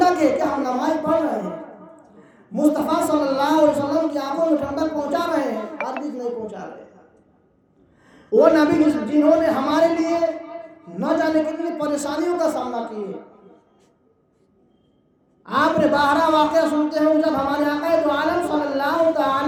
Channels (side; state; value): both; identical; correlation 1.00